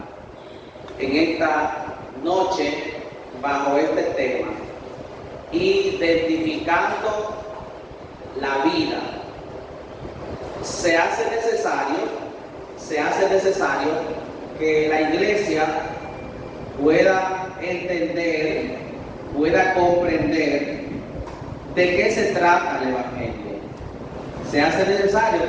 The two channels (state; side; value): identical; both; correlation 1.00